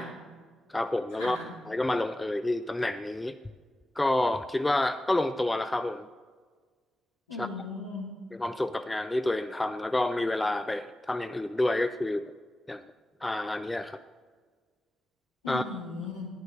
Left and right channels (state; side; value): normal; both; correlation 0.94